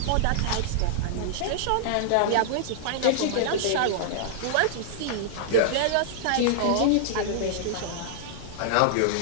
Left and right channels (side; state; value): both; different; correlation -0.01